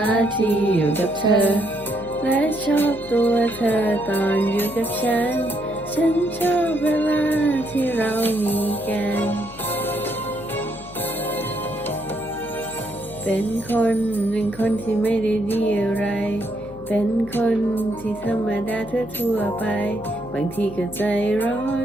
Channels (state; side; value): noise; left; hum, 19 dB below the sound